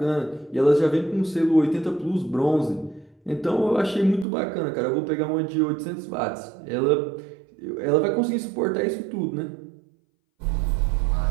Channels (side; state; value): left; drops out; at 4.2 s